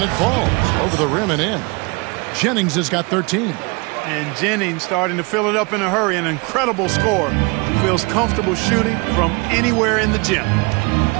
it falls over the rim and in. Jennings has got 13. And Jennings starting to fill it up in a hurry. An incredible score. Feels comfortable shooting from anywhere in the gym.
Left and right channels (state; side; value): quieter; left; 28.7 dB